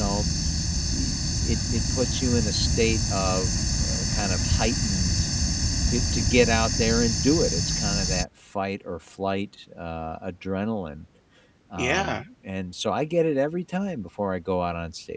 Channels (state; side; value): identical; both; correlation 1.00